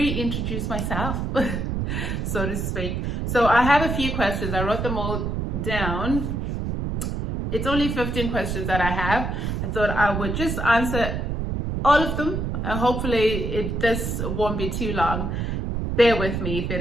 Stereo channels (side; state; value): right; noise; rumble, 2 dB below the sound